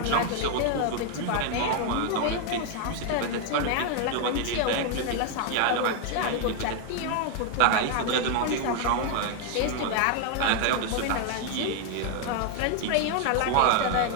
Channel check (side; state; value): both; different; correlation 0.01